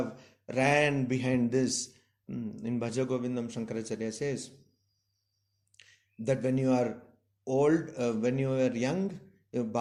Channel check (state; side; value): identical; both; correlation 1.00